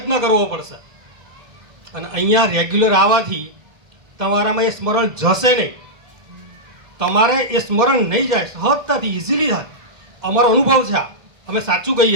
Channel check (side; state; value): left; late; 2.0 ms